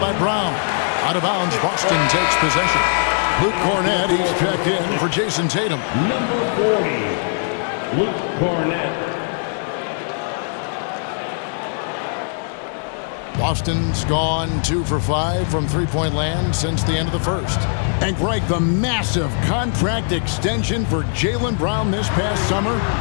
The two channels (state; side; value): silent; right; 66 dB below the other